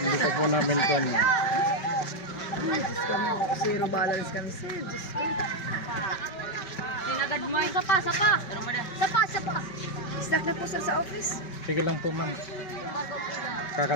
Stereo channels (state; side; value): late; right; 5.2 ms